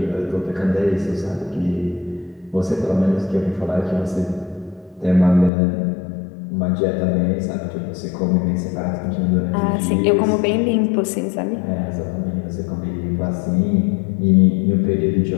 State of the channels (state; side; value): drops out; right; at 5.5 s